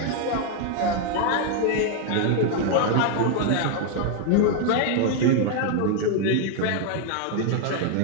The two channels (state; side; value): different; both; correlation 0.00